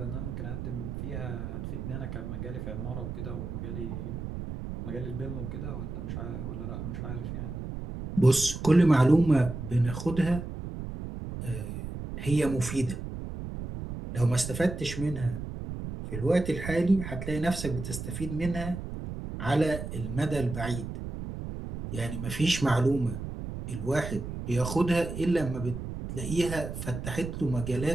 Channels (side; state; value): right; noise; rumble, 7 dB below the sound